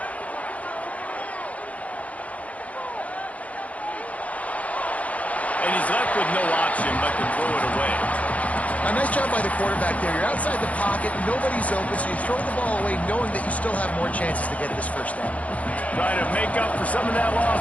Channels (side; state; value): right; late; 0.066 ms